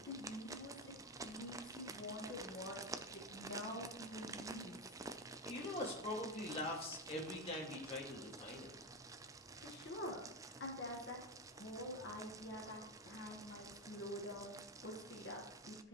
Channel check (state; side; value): normal; both; correlation 0.15